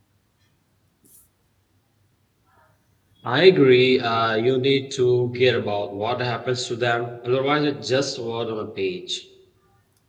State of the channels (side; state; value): both; identical; correlation 1.00